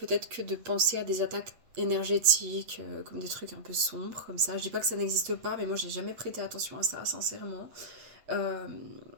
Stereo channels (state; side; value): late; left; 8.3 ms